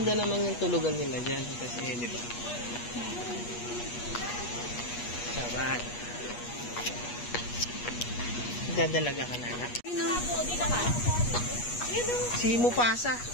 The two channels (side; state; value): right; late; 8.3 ms